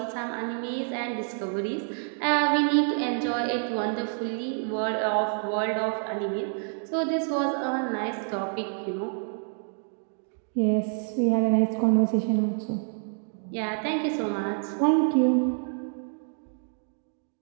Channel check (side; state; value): left; silent; 60 dB below the other